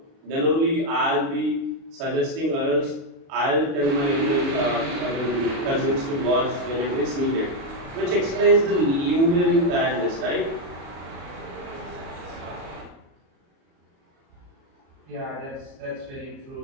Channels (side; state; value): left; late; 37 ms